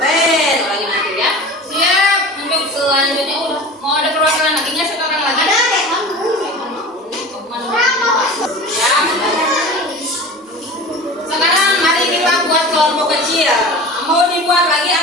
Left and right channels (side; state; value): both; normal; correlation 0.36